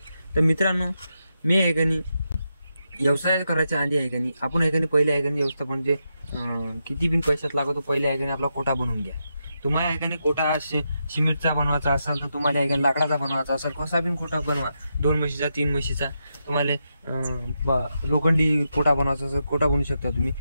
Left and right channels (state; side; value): inverted; both; correlation -0.85